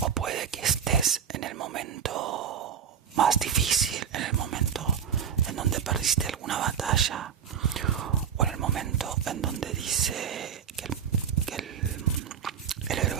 O puede que estés en el momento más difícil, en el momento en donde perdiste alguna batalla, o en el momento en donde dice que el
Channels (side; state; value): left; quieter; 8.0 dB